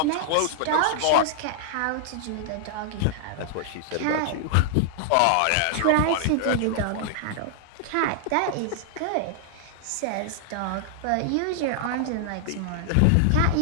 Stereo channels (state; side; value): different; both; correlation 0.00